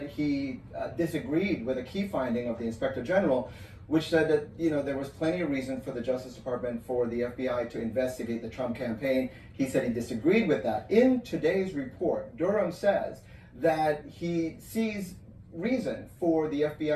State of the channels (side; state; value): both; identical; correlation 1.00